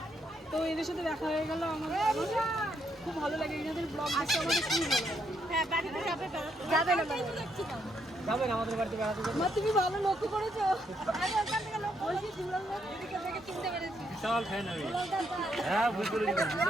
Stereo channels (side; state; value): both; normal; correlation 0.75